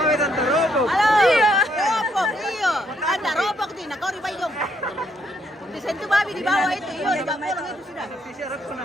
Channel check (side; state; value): both; normal; correlation 0.72